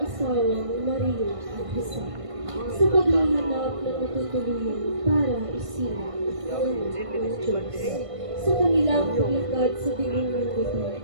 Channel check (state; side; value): late; left; 1.5 ms